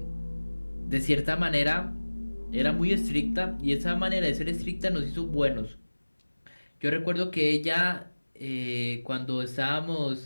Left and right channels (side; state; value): both; inverted; correlation -1.00